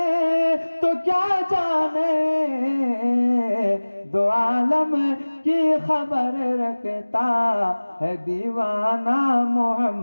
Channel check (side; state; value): both; inverted; correlation -1.00